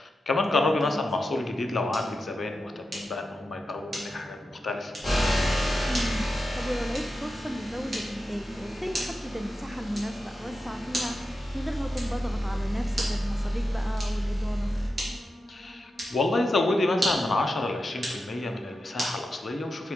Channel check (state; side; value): normal; both; correlation 0.90